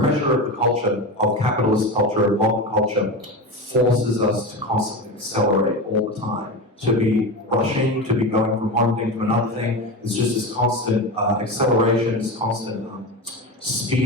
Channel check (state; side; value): normal; both; correlation 0.22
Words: of the culture, of capitalist culture, of modern culture, forces us to constantly accelerate all the time. To be rushing, to be going from one thing to another thing. It's just this constant acceleration, this constant